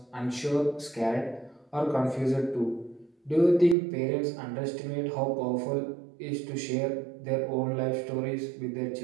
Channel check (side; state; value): left; drops out; at 3.8 s